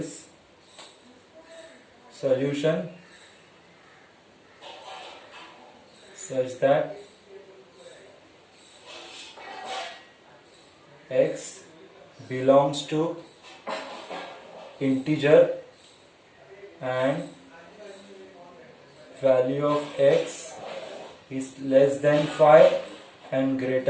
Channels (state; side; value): identical; both; correlation 1.00